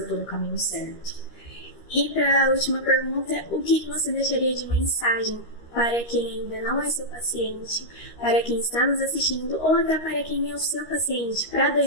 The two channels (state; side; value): late; right; 13 ms